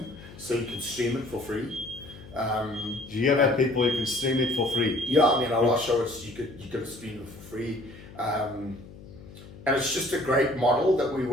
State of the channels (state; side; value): noise; left; hum, 18 dB below the sound